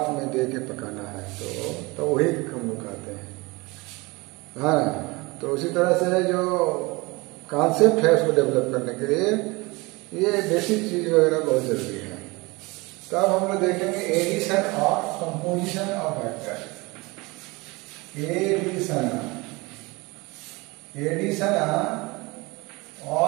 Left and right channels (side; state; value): left; quieter; 24.4 dB